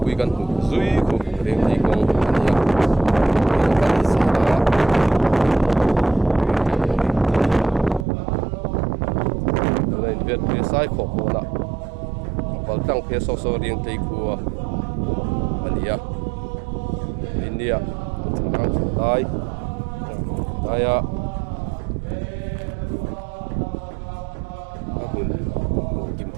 pui kan zui ko riang tei kong ania kan sa nei vet pe sai kho ko na bal tang phe so so riang tei ku ania india chang dai daya kim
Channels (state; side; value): drops out; left; at 8.1 s